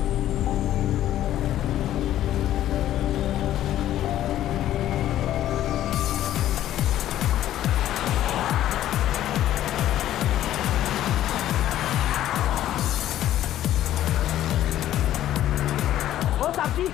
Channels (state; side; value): quieter; right; 12.6 dB